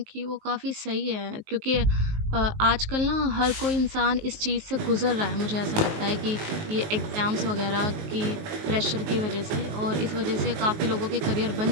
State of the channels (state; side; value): late; left; 19 ms